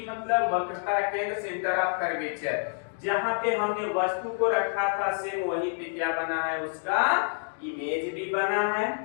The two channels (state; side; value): silent; right; 59 dB below the other